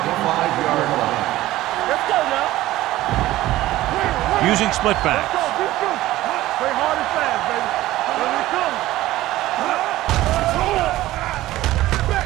line. Let's go now. Using split backs. Let's go. Play hard and fast, baby.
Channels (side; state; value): left; quieter; 16.0 dB